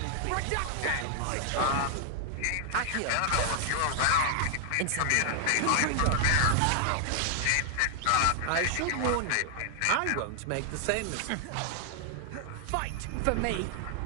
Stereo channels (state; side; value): different; both; correlation 0.00